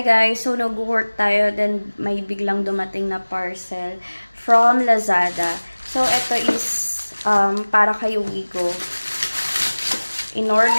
guys, so nag-work tayo, then may biglang dumating na parcel from Lazada. So ito is para kay Wigo.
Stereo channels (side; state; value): both; inverted; correlation -1.00